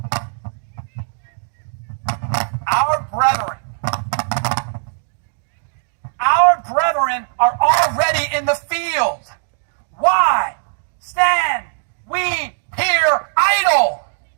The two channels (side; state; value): left; silent; digital silence